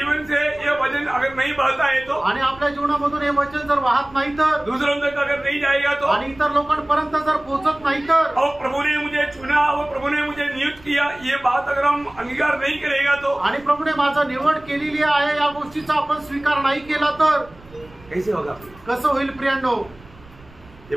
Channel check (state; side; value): noise; right; rumble, 24 dB below the sound